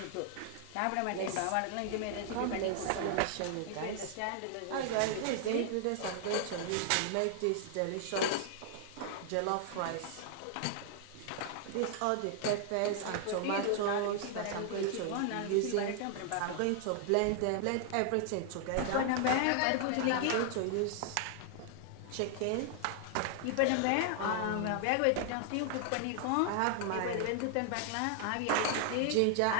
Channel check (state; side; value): different; both; correlation 0.00